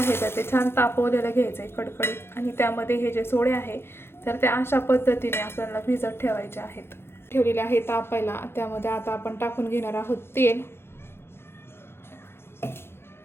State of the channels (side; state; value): right; late; 0.12 ms